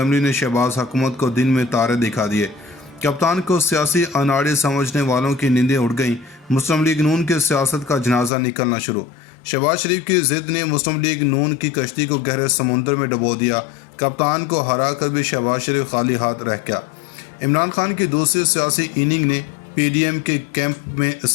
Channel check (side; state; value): right; drops out; at 8.3 s